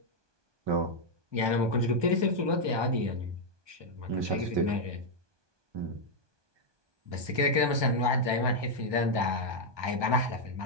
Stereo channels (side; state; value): left; late; 1.2 ms